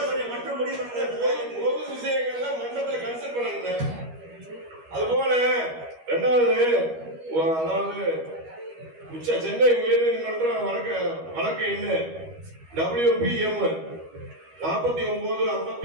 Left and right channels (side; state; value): left; late; 13 ms